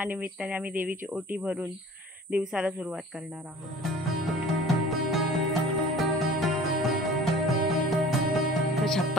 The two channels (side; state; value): both; normal; correlation 0.45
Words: निमित्ताने आम्ही देवीची ओटी भरून दिवसाला सुरुवात करणार आहोत.